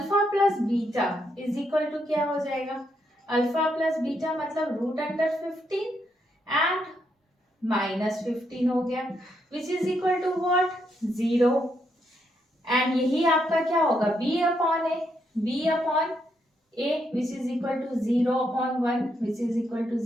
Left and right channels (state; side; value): normal; both; correlation 0.78